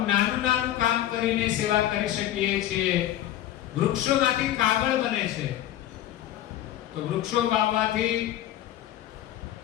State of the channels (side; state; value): right; quieter; 12.7 dB